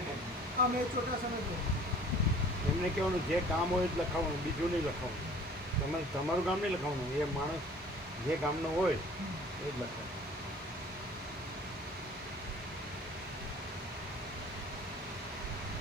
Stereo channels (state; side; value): normal; both; correlation 0.49